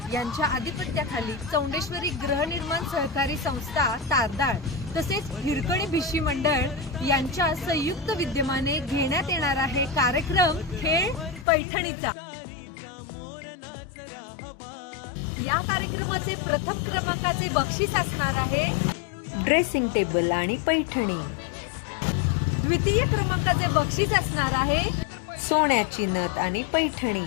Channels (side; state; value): right; drops out; at 11.5 s